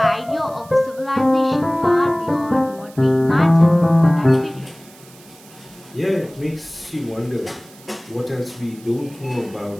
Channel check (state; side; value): noise; right; hiss, 24 dB below the sound